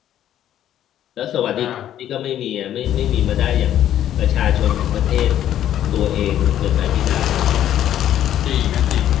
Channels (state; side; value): quieter; right; 11.3 dB